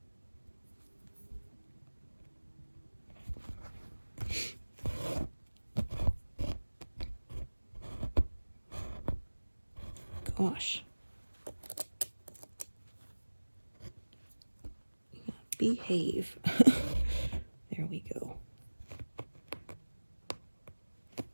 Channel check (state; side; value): inverted; both; correlation -1.00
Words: Gosh. Behave. There we go.